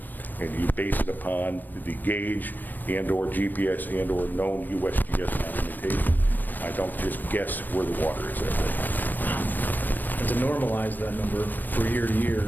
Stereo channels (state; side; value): late; right; 0.090 ms